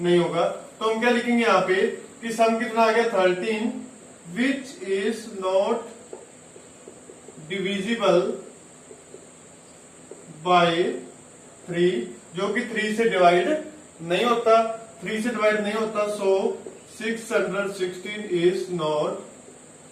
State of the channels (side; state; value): both; identical; correlation 1.00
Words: होगा। तो हम क्या लिखेंगे यहाँ पे कि सम कितना आ गया 13, which is not divisible by 3, जो कि 3 से डिवाइड नहीं होता। 3 से डिवाइड नहीं होता, सो 616 इज नॉट